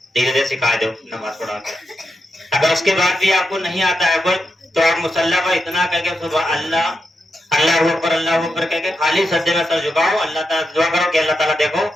धीरे धीरे सिखा दो नमाज पढ़ा कर। अगर उसके बाद भी आपको नहीं आता है कोई, तो आप मुसल्ला पर इतना कह के सुबह अल्लाह अल्लाह ऊपर कह के खाली सज्जे में सर झुकाओ, अल्लाह ताला दुआ करो कि अल्लाह ताला देखो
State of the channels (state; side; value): normal; both; correlation 0.86